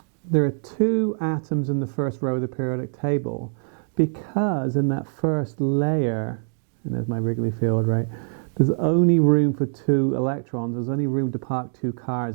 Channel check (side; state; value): left; silent; digital silence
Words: there are two atoms in the first row of the periodic table because in that first layer, and there's my Wrigley field, right, there's only room for two electrons. There's only room to park two